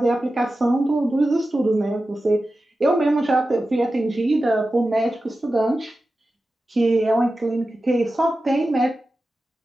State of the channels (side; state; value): both; normal; correlation 0.93